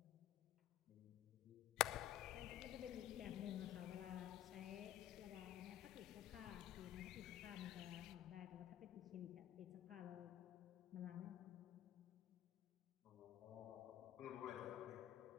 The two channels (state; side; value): quieter; right; 12.5 dB